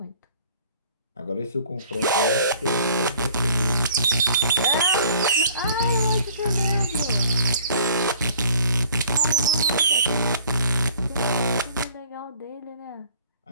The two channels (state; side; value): inverted; both; correlation -0.54